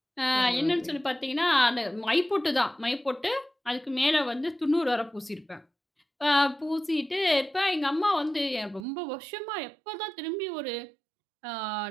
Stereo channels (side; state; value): left; drops out; at 8.8 s